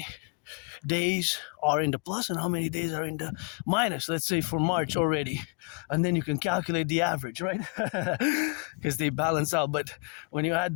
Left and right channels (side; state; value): right; quieter; 34.6 dB